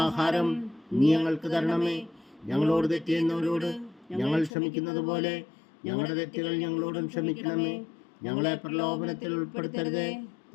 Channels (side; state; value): right; drops out; at 4.5 s